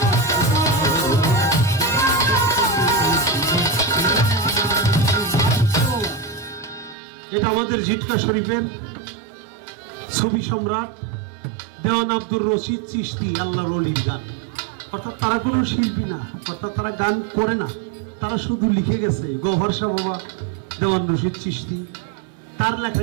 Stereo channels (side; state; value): left; drops out; at 7.0 s